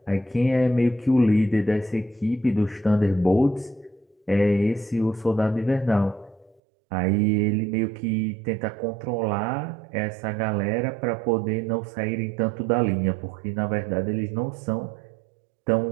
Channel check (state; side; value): drops out; left; at 6.6 s